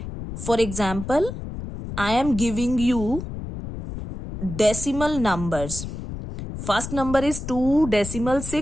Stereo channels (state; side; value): noise; left; rumble, 8 dB below the sound